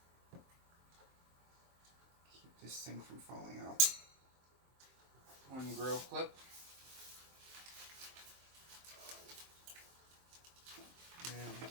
Keep this thing from falling out. One grill clip. And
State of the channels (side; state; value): left; late; 23 ms